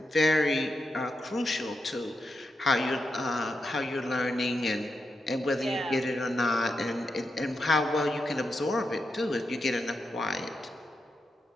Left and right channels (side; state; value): both; normal; correlation 0.86